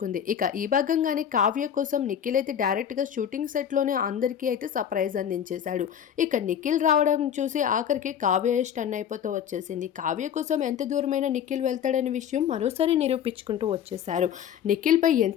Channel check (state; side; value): quieter; right; 9.0 dB